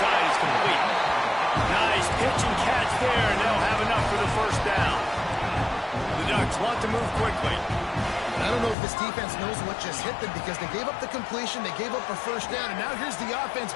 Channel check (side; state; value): right; drops out; at 8.8 s